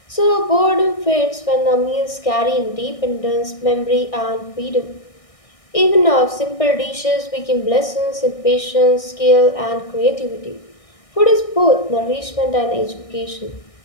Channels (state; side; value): late; right; 1.6 ms